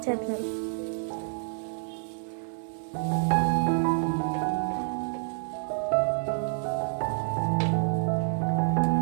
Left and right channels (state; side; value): silent; left; 59 dB below the other